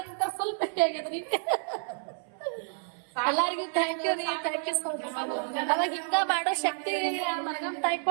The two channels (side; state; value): left; silent; 58 dB below the other